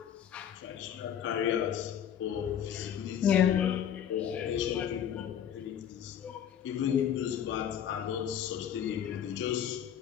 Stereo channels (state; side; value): quieter; right; 9.3 dB